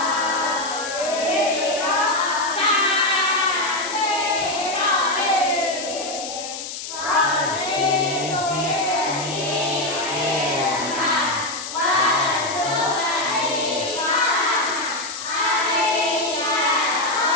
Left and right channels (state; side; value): noise; left; hiss, 8 dB below the sound